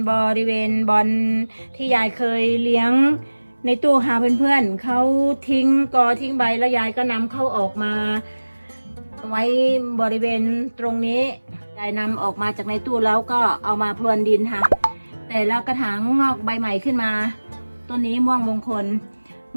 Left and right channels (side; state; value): both; inverted; correlation -1.00